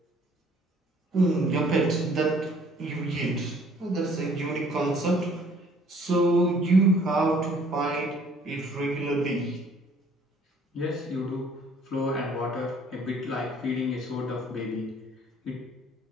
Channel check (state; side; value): normal; both; correlation 0.58